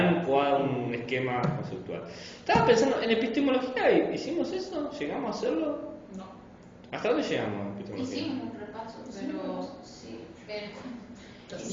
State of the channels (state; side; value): identical; both; correlation 1.00